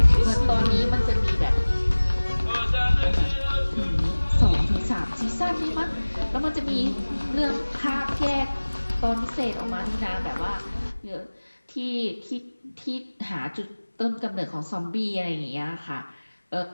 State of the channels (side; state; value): both; inverted; correlation -1.00